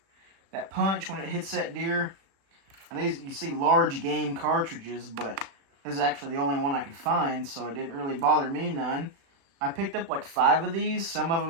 that punch when it hits that deer. And these, you see large game cartridges, but this is actually the only one I could find, so it didn't really bother me none. I picked up like 5 of these. Some of them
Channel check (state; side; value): late; left; 36 ms